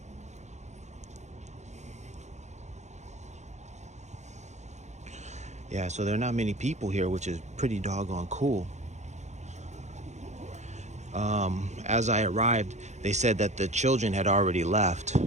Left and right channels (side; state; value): left; late; 0.33 ms